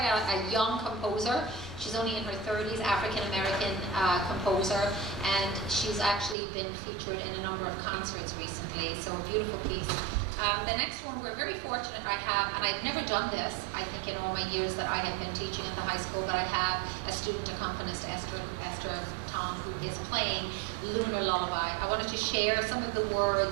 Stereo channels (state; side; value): drops out; left; at 6.4 s